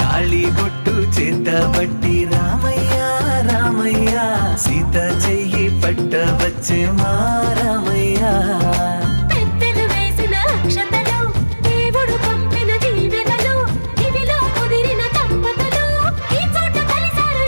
తాళి బొట్టు చేతబట్టి రామయ్య రామయ్య సీత చెయ్యి పట్ట వచ్చే మా రామయ్య పెద్దలు వేసిన అక్షతలు దేవుడు పంపిన దీవెనలు ఇవిలో కుదిరిన దంపతులు ఈ చోట కలిసారు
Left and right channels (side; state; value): both; inverted; correlation -1.00